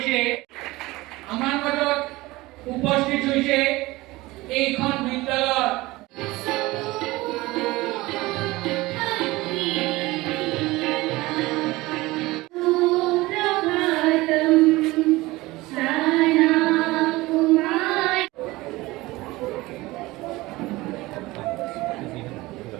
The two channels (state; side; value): quieter; left; 20.1 dB